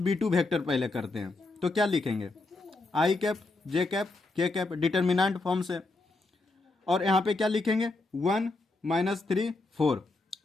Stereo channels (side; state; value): right; quieter; 3.3 dB